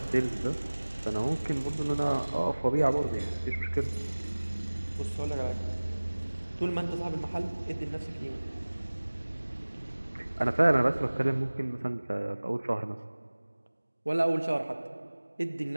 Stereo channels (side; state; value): both; inverted; correlation -1.00